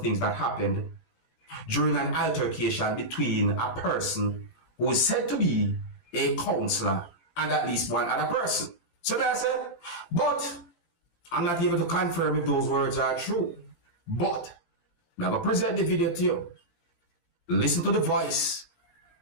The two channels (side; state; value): right; late; 17 ms